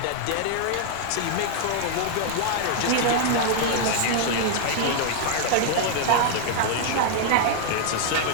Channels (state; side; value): different; both; correlation 0.00